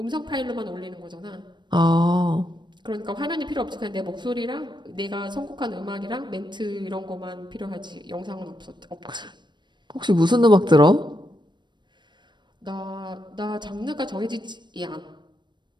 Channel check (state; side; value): late; left; 0.22 ms